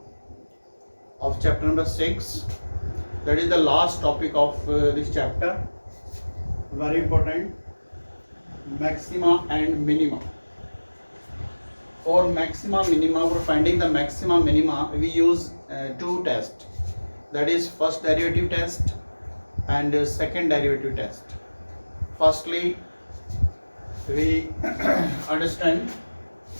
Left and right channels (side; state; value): both; inverted; correlation -1.00